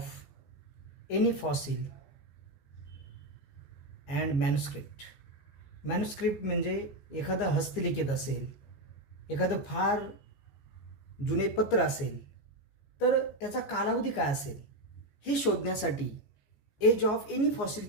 any fossil and manuscript. Manuscript म्हणजे एखादं हस्तलिखित असेल, एखादं फार जुने पत्र असेल, तर त्याचा कालावधी काय असेल हे शोधण्यासाठी एज ऑफ एनी फॉसिल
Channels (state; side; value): late; right; 14 ms